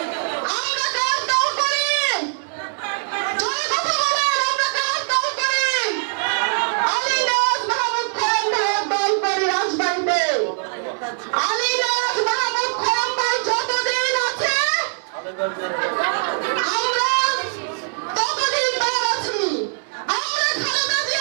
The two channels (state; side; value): silent; left; 64 dB below the other